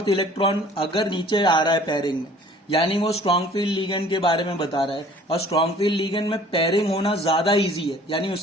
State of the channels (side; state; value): both; normal; correlation 0.52